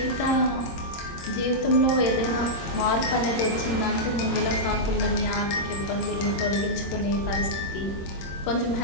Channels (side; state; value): right; late; 26 ms